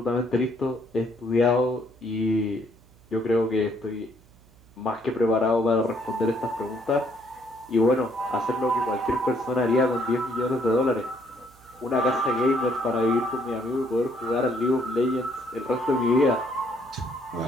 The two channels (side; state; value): right; noise; hum, 27 dB below the sound